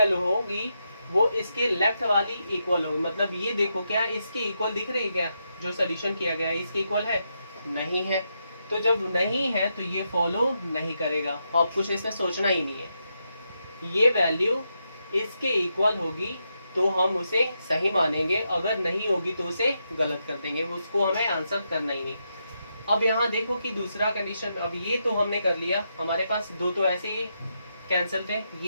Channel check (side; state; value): both; inverted; correlation -0.83